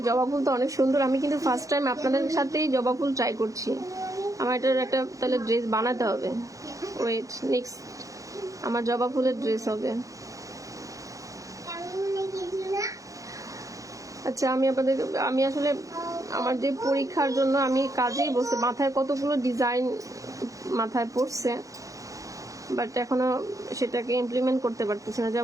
জবা ফুল তো অনেক সুন্দর, আমি কিন্তু ফার্স্ট টাইম আপনাদের সাথেই জবা ফুল ট্রাই করছি। আমার এটার একটা তাহলে ড্রেস বানাতে হবে। ওয়েট, নেক্সট আমার জবা ফুলের ড্রেস হবে। আচ্ছা, আমি আসলে আমার যে পরীক্ষার জন্য আমি কাজেই বসে, মাথায় কতগুলো ডিজাইন মাথায় পড়ছে, বাট এখনো সেটাকে ইমপ্লিমেন্ট করতে পারতেছি না।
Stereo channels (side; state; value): left; late; 0.16 ms